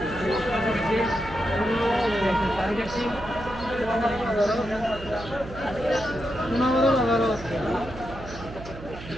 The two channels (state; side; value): noise; right; hum, 13 dB below the sound